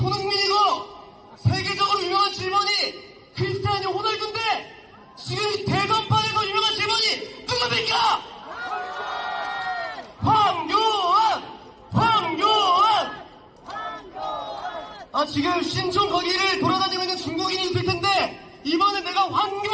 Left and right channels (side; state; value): both; identical; correlation 1.00